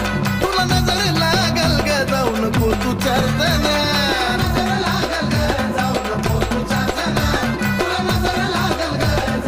तुला नजर लागल ग जाऊ नको तू चार जना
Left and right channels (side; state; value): both; identical; correlation 1.00